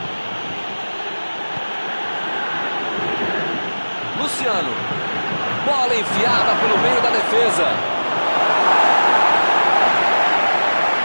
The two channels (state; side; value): inverted; both; correlation -1.00